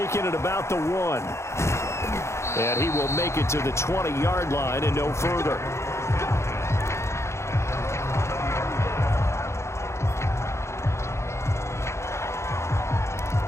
it about the 1. And he will make it to the 20-yard line and no further.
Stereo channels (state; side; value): late; right; 0.13 ms